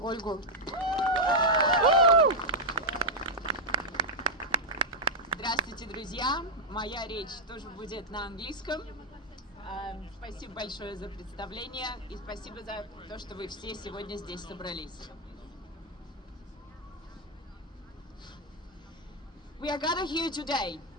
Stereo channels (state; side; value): normal; both; correlation -0.03